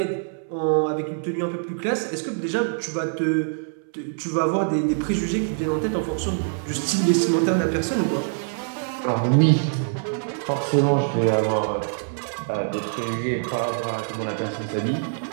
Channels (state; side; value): silent; left; 62 dB below the other